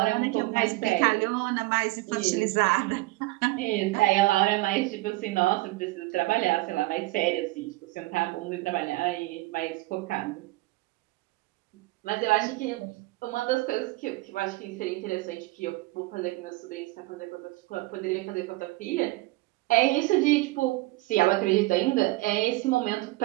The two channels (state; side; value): quieter; left; 20.4 dB